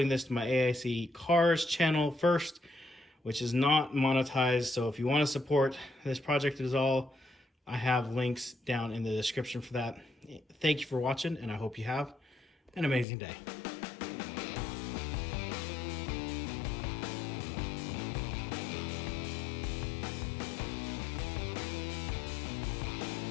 this to my AIC Cars channel first, which is not monetized. So if you want to support this project at all, I have links down in the description for that. Thank you for watching, and I hope you have an amazing day.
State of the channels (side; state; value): right; drops out; at 13.1 s